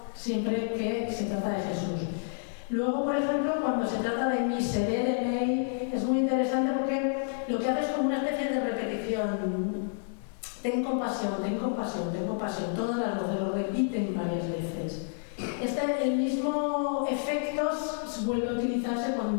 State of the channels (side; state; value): right; silent; digital silence